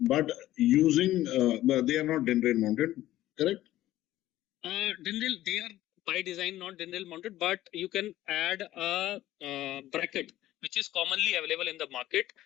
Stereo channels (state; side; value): quieter; right; 14.7 dB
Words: using, they are not DIN rail mounted, correct? Dindle, they are by design not dindle mounted, but you can add a bracket which is commonly available in the market